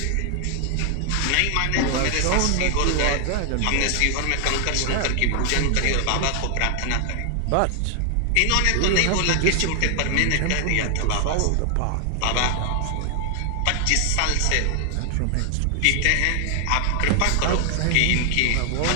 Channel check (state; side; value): different; both; correlation 0.00